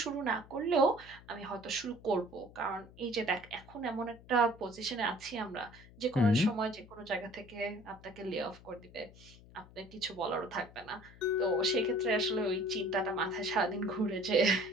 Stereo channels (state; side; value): noise; left; hum, 21 dB below the sound